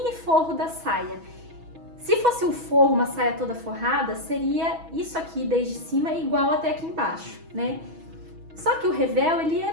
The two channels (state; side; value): late; left; 6.2 ms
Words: forro da saia. Se fosse um forro, uma saia toda forrada, seria isso aqui desde cima igual até aqui embaixo, né? Só que o revel, ele é